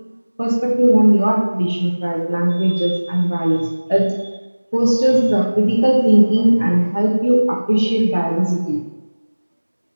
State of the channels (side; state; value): both; inverted; correlation -1.00